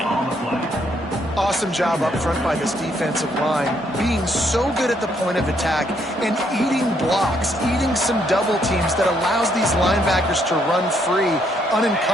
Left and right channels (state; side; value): normal; both; correlation 0.72